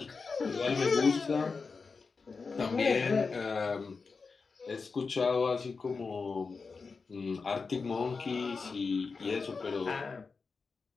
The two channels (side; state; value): right; quieter; 4.7 dB